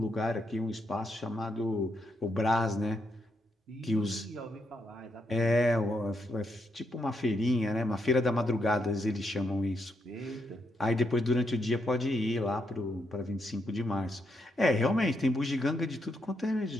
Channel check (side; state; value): both; normal; correlation 0.79